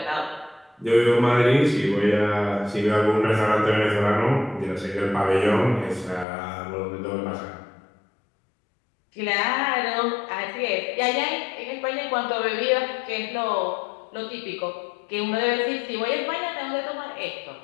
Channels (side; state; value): right; drops out; at 6.2 s